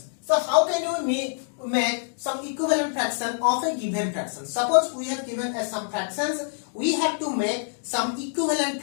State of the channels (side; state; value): right; silent; digital silence